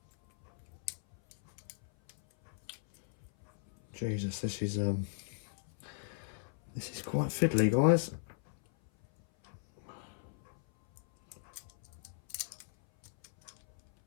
Jesus, this is quite fiddly, guys.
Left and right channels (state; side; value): silent; right; 53 dB below the other